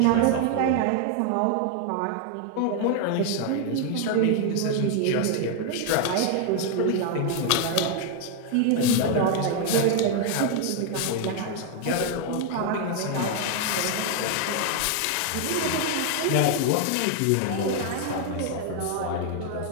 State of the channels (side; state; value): both; different; correlation 0.00